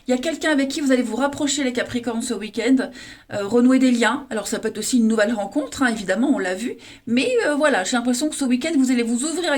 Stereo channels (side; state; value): both; identical; correlation 1.00